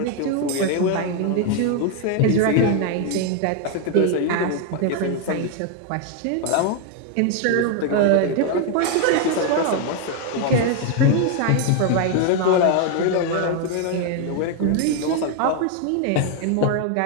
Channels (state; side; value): different; both; correlation 0.01